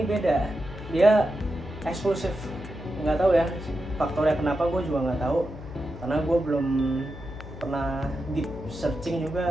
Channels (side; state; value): left; noise; hum, 12 dB below the sound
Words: beda. Dia eksklusif. Nggak tahu ya faktornya kenapa, gue juga nggak tahu. Karena gue belum pernah deep searching